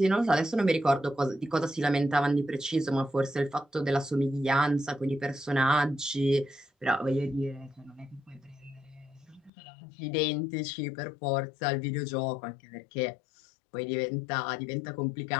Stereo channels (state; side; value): drops out; right; at 9.5 s